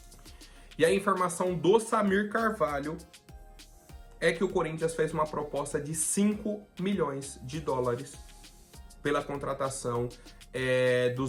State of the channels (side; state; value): both; identical; correlation 1.00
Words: E a informação do Samir Carvalho é que o Corinthians fez uma proposta de 5 milhões de dólares pela contratação do